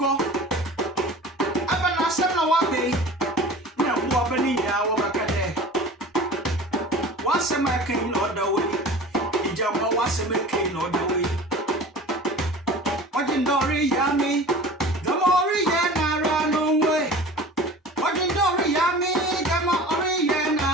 Abana Sama Wabe. Now, Wabani, Wabakade. What's a making order way? Ijamba was a making order way. What in Dory Yami? The more Yana run away. What in Dory Yami? The more Yana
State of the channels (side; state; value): both; normal; correlation 0.39